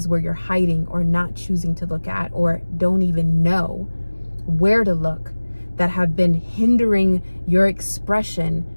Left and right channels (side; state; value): both; inverted; correlation -1.00